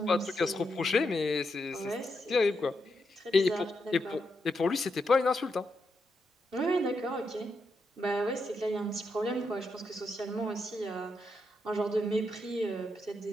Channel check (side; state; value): both; normal; correlation 0.83